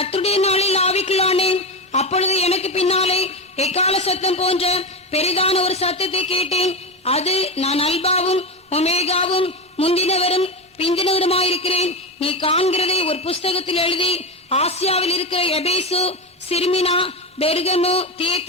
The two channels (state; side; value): normal; both; correlation 0.17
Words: நாளில் ஆவிக்குள்ளானேன். அப்பொழுது எனக்கு பின்னாலே எக்கால சத்தம் போன்ற பெரிதான ஒரு சத்தத்தை கேட்டேன். அது, நான் அல்பாவும் ஒமேகாவும் முந்தினவரும் பிந்தினவருமாயிருக்கிறேன். நீ காண்கிறதை ஒரு புஸ்தகத்தில் எழுதி ஆசியாவில் இருக்கிற எபேசு, சிர்மினா, பெர்கமு,